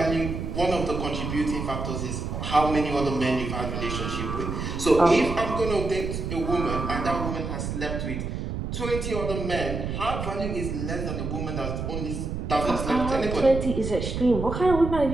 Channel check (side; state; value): right; noise; rumble, 4 dB below the sound